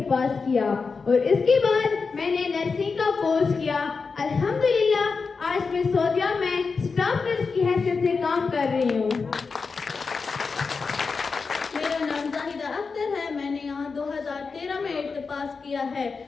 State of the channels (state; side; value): quieter; right; 4.8 dB